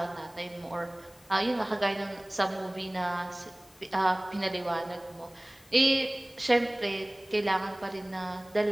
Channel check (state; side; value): noise; left; hiss, 26 dB below the sound